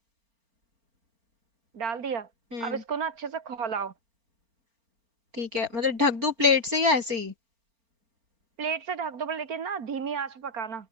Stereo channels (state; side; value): late; left; 4.4 ms